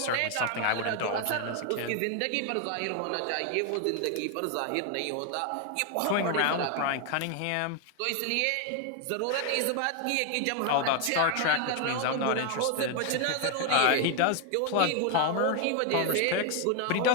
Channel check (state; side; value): different; both; correlation 0.01